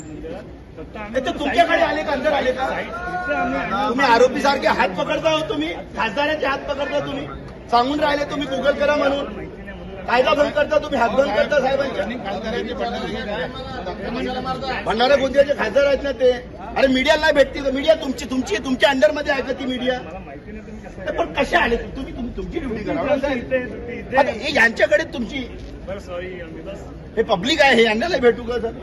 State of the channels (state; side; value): identical; both; correlation 1.00